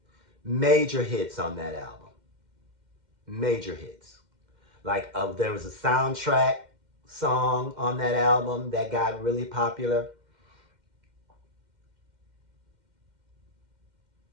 Major hits on that album. Major hits. Like there was a soundtrack song on that album that got really popular.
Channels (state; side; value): late; left; 2.1 ms